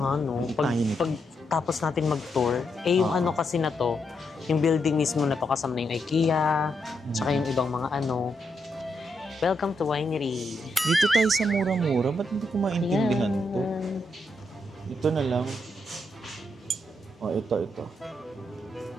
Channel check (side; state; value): both; normal; correlation 0.81